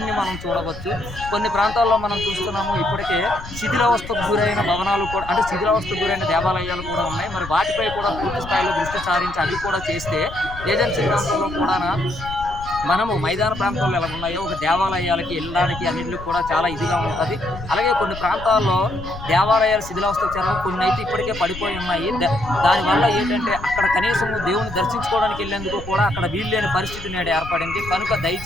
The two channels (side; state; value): left; noise; rumble, 12 dB below the sound